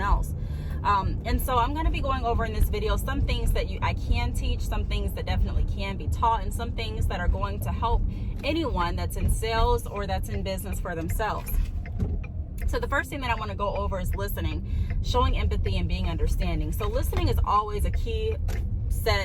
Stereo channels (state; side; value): identical; both; correlation 1.00